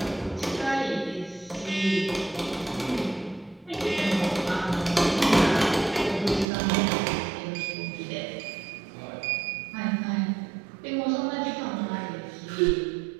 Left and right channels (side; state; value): left; drops out; at 6.5 s